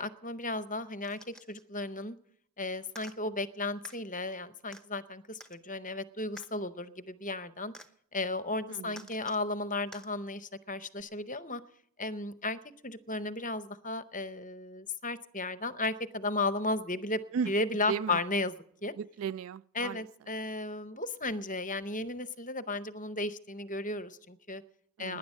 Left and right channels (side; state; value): both; normal; correlation 0.00